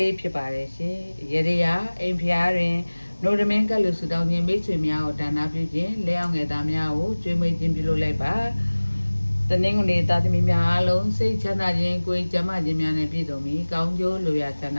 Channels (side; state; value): both; inverted; correlation -1.00